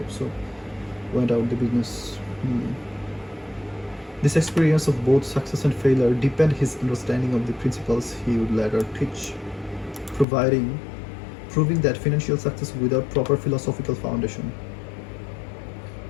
so went out the business. This experience of both success and failure deepened his understanding of the principles he would later teach, proving that financial success without proper philosophical foundation.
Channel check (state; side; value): drops out; right; at 10.2 s